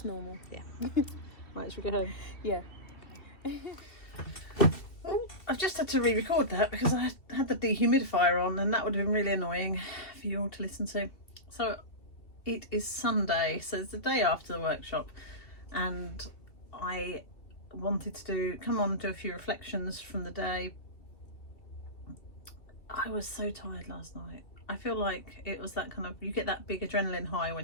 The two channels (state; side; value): late; right; 2.7 ms